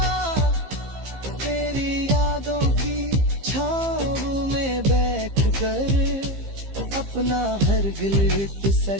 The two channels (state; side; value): late; left; 15 ms